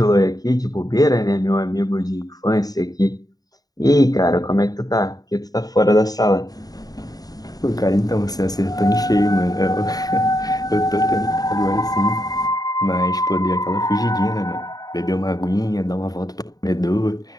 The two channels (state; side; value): late; right; 0.18 ms